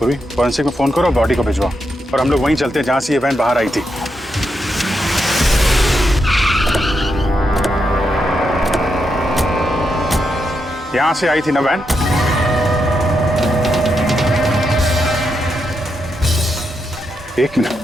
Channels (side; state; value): both; normal; correlation 0.83